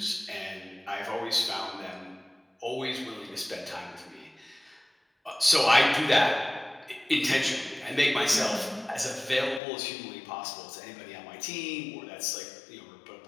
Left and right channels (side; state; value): right; drops out; at 9.6 s